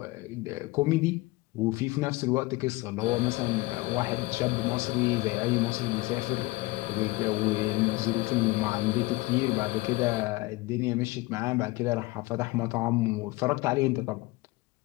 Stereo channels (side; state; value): right; quieter; 21.8 dB